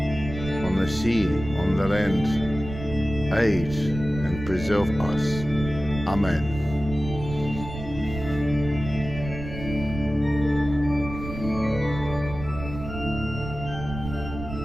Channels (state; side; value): noise; right; rumble, 10 dB below the sound